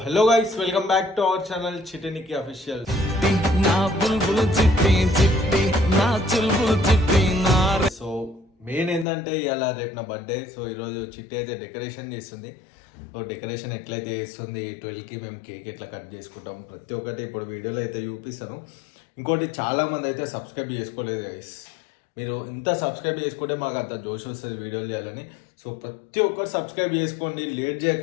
hello guys, welcome back to our channel చిటినికి official. So main ఏంటంటే ఇవాళ రేపు నా బర్త్డే. సో ఈరోజు చిట్టి అయితే డెకరేషన్ చేస్తుంది. సో డెకరేషన్ ఎట్లయితే చేస్తుంది, 12కి మేము కేక్ ఎట్లా కట్ చేసుకుంటాం ప్రతి ఒక్కటి ఇప్పుడు వీడియోలో అయితే చూపిస్తాను. ఇంకోటి చాలామంది అయితే సబ్స్క్రైబ్ చేసుకోలేదు గైస్. మీరు ఇంత సబ్స్క్రైబ్ చేసుకుంటే మాకు అంత జోష్ వస్తుంది వీడియోలు చేయాలని. సో ప్రతి ఒక్కరు సబ్స్క్రైబ్ చేసుకోండి, లేట్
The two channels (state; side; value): drops out; right; at 9.1 s